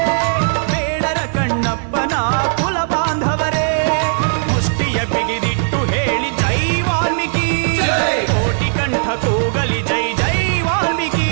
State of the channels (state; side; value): silent; left; digital silence